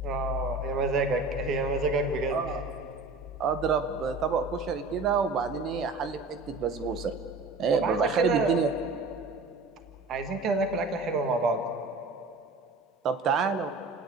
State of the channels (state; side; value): quieter; left; 3.5 dB